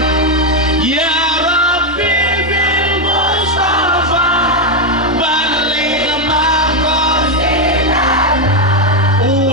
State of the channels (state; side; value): normal; both; correlation 0.05